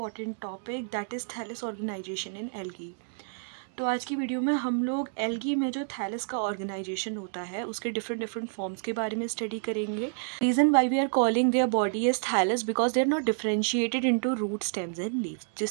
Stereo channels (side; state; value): left; silent; digital silence